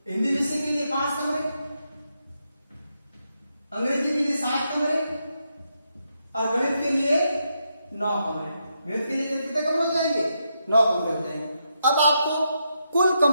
हिंदी विषय के लिए 5 कमरे, अंग्रेजी के लिए 7 कमरे और गणित के लिए 9 कमरे। गणित के लिए कितने कमरे हो जाएंगे? 9 कमरे हो जाएंगे। अब आपको कुल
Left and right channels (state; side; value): inverted; both; correlation -0.82